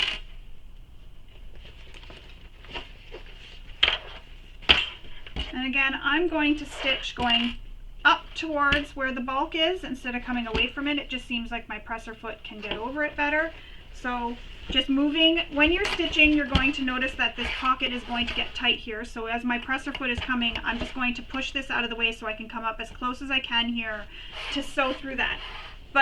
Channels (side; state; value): both; identical; correlation 1.00